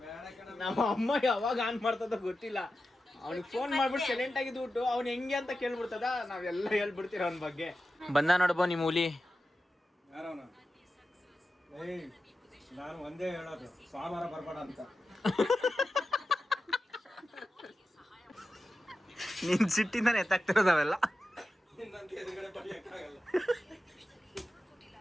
ನಮ್ಮ ಅಮ್ಮ ಯಾವಾಗ ಆನ್ ಮಾಡ್ತದ ಗೊತ್ತಿಲ್ಲ. ಅವ್ನಿಗೆ ಫೋನ್ ಮಾಡ್ಬಿಟ್ಟು ಸೈಲೆಂಟ್ ಆಗಿದ್ಬಿಟ್ಟು ಅವ್ನು ಹೆಂಗೆ ಅಂತ ಕೇಳ್ಬಿಡ್ತದ, ನಾವೆಲ್ಲ ಹೇಳ್ಬಿಡ್ತೀರ ಅವನ ಬಗ್ಗೆ. ಬಂದ ನೋಡ್ಬೋ ನಿಮ್ಮ ಹುಲಿ. ಯಾರವನ? ಏಯ್, ನಾನು ಒಂದೇ ಹೇಳೋದು, ಸೋಮವಾರ ಬರ್ಬೇಡ ಅಂತ. ನಿನ್ ಸಿಟ್ಟಿಂದಾನೆ ಎತ್ತಾಗ್ತಿರೋದವೆಲ್ಲ. ನಿನ್ನಂತ ಎದುರುಗಡೆ ಬಡಿಯಕ್ಕಾಗಲ್ಲ.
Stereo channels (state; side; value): normal; both; correlation 0.92